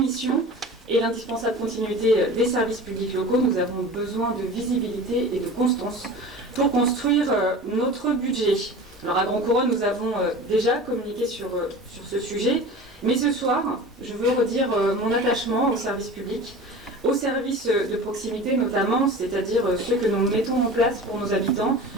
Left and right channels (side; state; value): both; normal; correlation 0.36